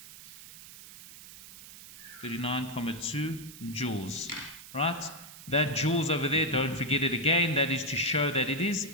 39,2 joules, right? That joules over there, don't forget it again, that is to show that it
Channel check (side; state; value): right; noise; hiss, 16 dB below the sound